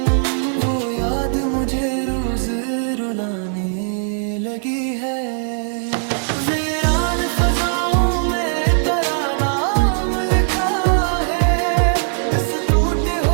वो याद मुझे रोज रुलाने लगी है। वीरान फजाओं में तेरा नाम लिखा है, इस टूटे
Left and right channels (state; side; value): silent; left; 63 dB below the other